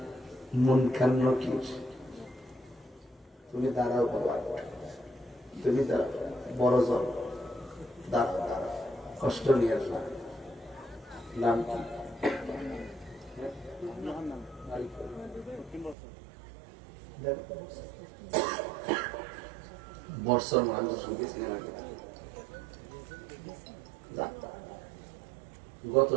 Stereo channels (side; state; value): left; drops out; at 16.0 s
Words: মুনকার নকির, তুমি দাঁড়াও বাবা, তুমি দাঁড়াও, বড় জন দাঁড়াও, দাঁড়াও, কষ্ট নিয়ে না। নাম কি? বর্ষর মানুষ সিনেমা, গত